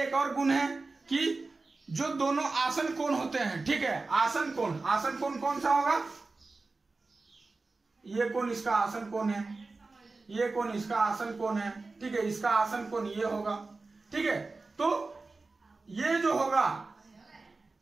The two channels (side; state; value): left; quieter; 3.7 dB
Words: और गुण है कि जो दोनों आसन कोण होते हैं, ठीक है, आसन कोण कौन सा होगा? ये कोण इसका आसन कोण है, ये कोण इसका आसन कोण है, ठीक है, इसका आसन कोण ये होगा, ठीक है। तो ये जो होगा,